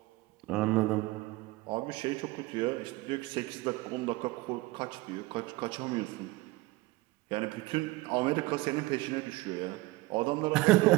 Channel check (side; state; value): left; quieter; 20.6 dB